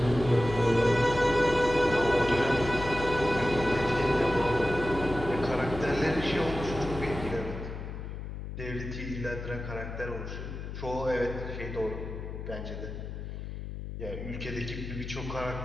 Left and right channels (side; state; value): left; noise; hum, 8 dB below the sound